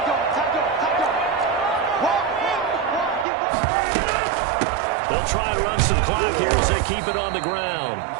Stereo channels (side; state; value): left; drops out; at 3.2 s